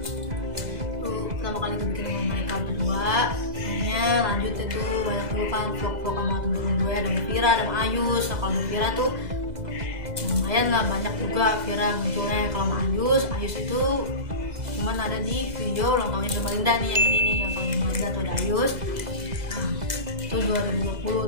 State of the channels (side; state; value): left; late; 2.0 ms